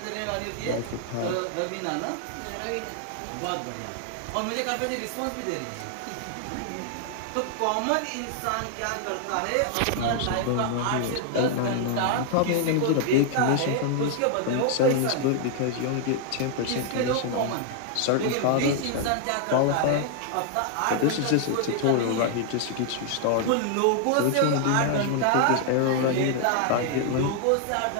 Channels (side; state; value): both; different; correlation 0.00